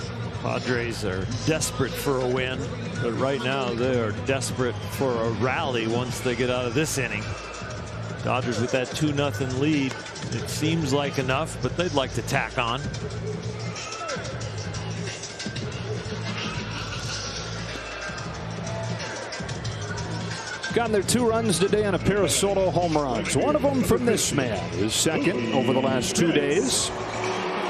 Padres are desperate for a win, but right now they are desperate for a rally once they get out of this inning. Dodgers with that 2-0 lead. It seems like enough, but they'd like to tack on. Gotten their 2 runs today on a pair of solo home runs. One of them from this man, his second over the last 2 days.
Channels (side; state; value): both; identical; correlation 1.00